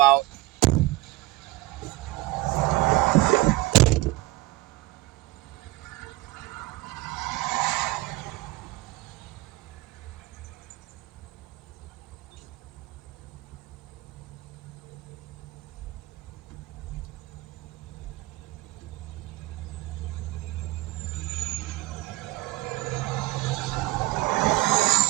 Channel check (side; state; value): left; quieter; 18.9 dB